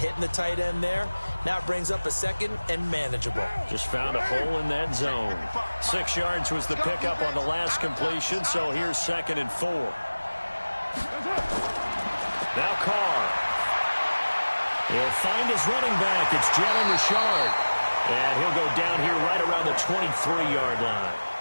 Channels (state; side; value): inverted; both; correlation -1.00